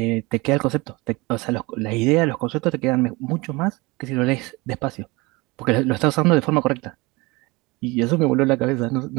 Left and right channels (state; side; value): quieter; left; 24.3 dB